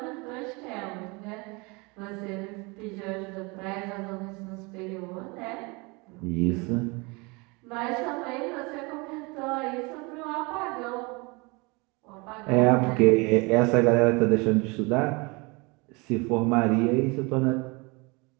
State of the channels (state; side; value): quieter; left; 27.5 dB